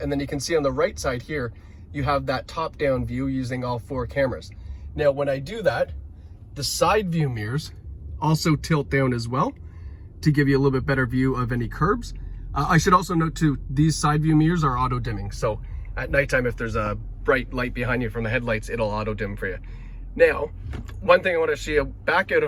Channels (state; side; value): identical; both; correlation 1.00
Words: And then you can see on the right side here, you have that top-down view using all 4 cameras. Now, when I do that, the side view mirrors also tilt down as well to give you a little bit better view of any curbs. I should also note too, these side view mirrors are auto dimming. So at nighttime, if there's a bright light behind you from the headlights, it'll auto dim for you. Now, one thing I want to show you, back out